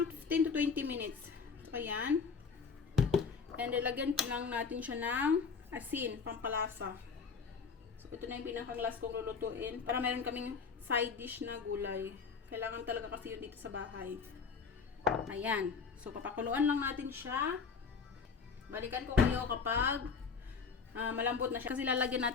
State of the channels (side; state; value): right; quieter; 5.6 dB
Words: 15 to 20 minutes. So, ayan. And lalagyan po lang natin siya ng asin, pampalasa. So, ito na yung pinaka-last kong lulutuin. Para meron kaming side dish na gulay. Kailangan talaga kasi yun dito sa bahay. Ayan. So, papakuluan lang natin siya. Balikan ko kayo kapag malambot na siya. Kasi lalagyan